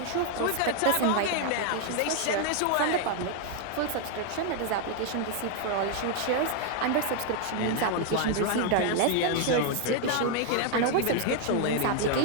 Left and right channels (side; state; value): both; different; correlation 0.00